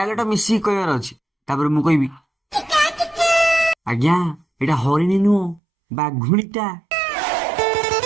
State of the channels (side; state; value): left; drops out; at 5.6 s